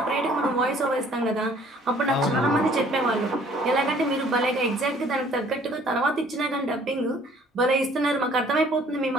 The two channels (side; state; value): both; normal; correlation 0.57